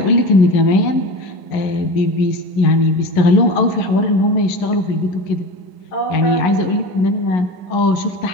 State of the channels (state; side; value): late; right; 11 ms